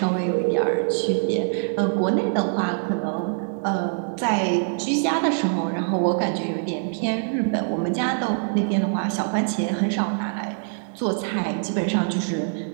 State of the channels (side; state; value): left; silent; digital silence